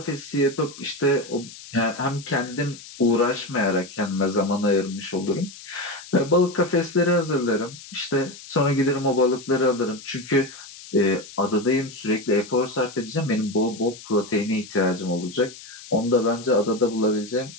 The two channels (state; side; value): noise; left; hiss, 16 dB below the sound